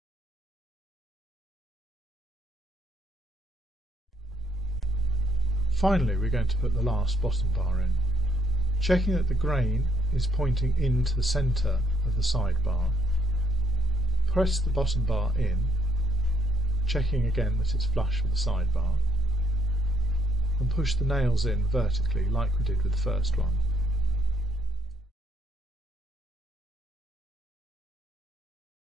Finally, we're going to put the last bottom bar in, checking that the grain is pointing into the centre of the sidebar. Press the bottom bar in, checking again that it's flush with the sidebar, and push the nails in vertically like we did with the first one.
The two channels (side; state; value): both; normal; correlation 0.89